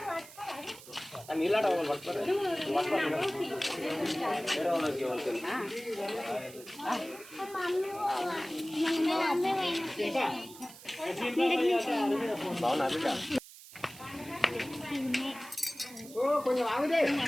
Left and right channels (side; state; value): right; noise; hiss, 18 dB below the sound